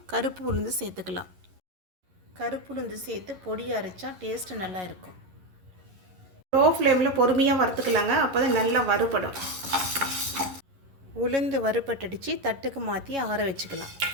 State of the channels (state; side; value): late; left; 11 ms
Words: கருப்பு உளுந்து சேர்த்துக்கலாம். கருப்பு உளுந்து சேர்த்து பொடி அரைச்சா டேஸ்ட்டு நல்லா இருக்கும். லோ ஃப்ளேமில் பொறுமையாக வறுத்துக்கலாங்க, அப்போ தான் நல்லா வறுபடும். உளுந்து வறுபட்டடிச்சு தட்டுக்கு மாற்றி ஆற வச்சுக்கலாம்.